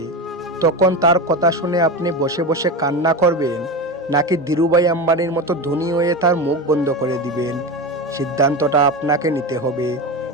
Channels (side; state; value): both; normal; correlation 0.21